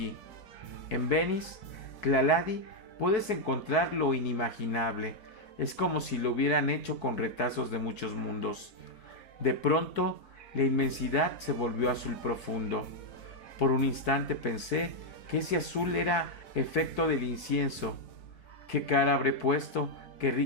En Venice, Tlaladi, puedes encontrar lo inimaginable. Es como si lo hubieran hecho con retazos de muchos mundos. De pronto, la inmensidad se volvió azul profundo. Por un instante pensé que ese azul era efecto del incienso. ¿Qué cara habré puesto que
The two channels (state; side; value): late; right; 4.6 ms